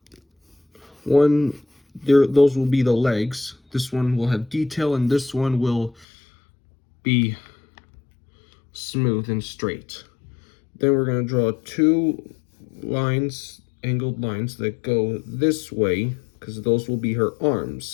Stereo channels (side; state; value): right; drops out; at 6.1 s